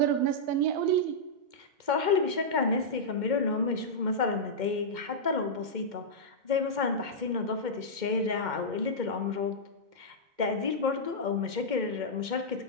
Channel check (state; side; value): late; left; 2.1 ms